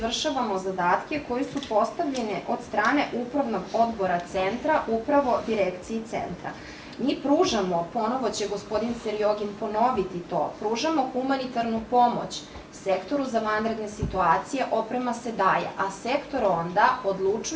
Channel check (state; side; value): identical; both; correlation 1.00